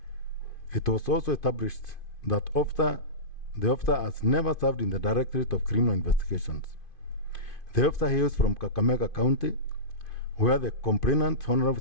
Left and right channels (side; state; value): right; late; 2.5 ms